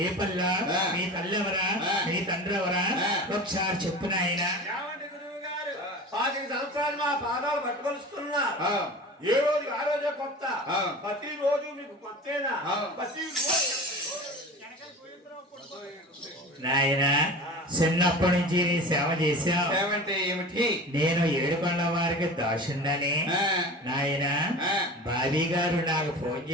ఏ పల్ల మీ తల్లెవరా మీ తండ్రెవరా ఒకసారి చెప్పు నాయన. 5 సంవత్సరాలు మా పాదాలు పట్టుకొలుస్తున్నా ఏ రోజు ఆ రోజే కొత్త ప్రతి రోజు మీకు కొత్తేనా ప్రతి నాయన చిన్నప్పటి నుంచి నీ సేవ చేశావు. సేవంటే ఏమిటి? నేను ఏడుకొండ వారికి దాసుండని నాయన బాబీ గారు నాకు ఫోన్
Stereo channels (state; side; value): normal; both; correlation 0.35